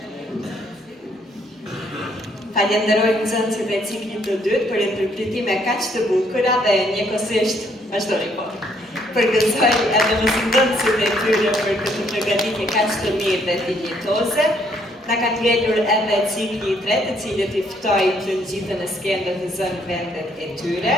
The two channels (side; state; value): both; normal; correlation 0.68